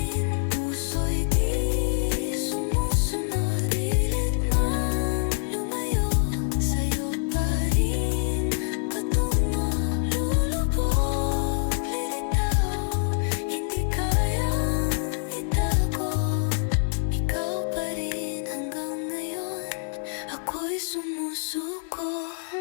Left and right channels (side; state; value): right; silent; digital silence